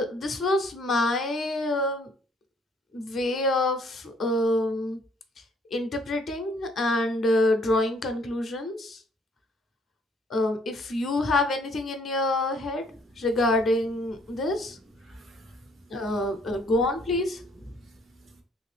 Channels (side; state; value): both; normal; correlation 0.63